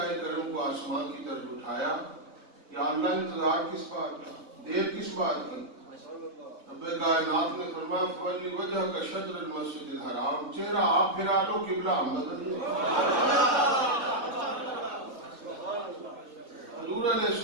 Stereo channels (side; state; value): left; late; 3.5 ms